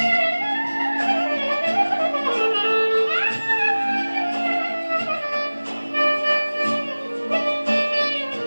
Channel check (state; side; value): inverted; both; correlation -1.00